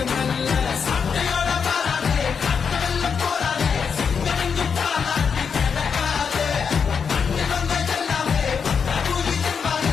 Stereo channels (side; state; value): right; quieter; 6.3 dB